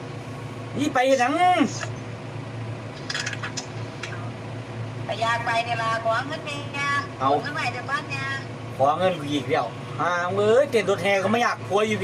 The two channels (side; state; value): both; identical; correlation 1.00